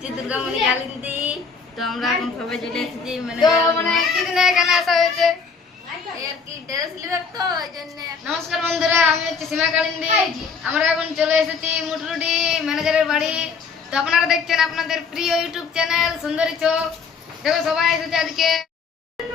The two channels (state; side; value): quieter; right; 5.4 dB